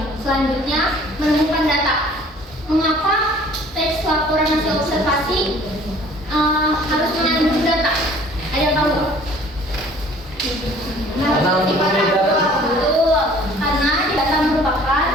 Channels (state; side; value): normal; both; correlation 0.52